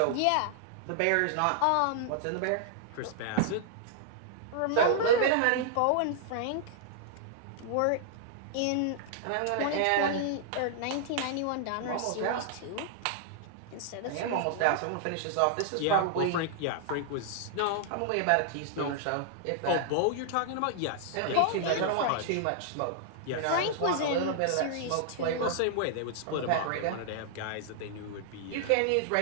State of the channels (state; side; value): different; both; correlation -0.01